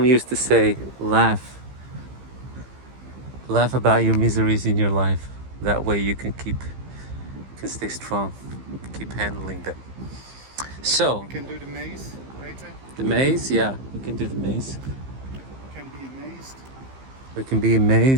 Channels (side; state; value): left; late; 15 ms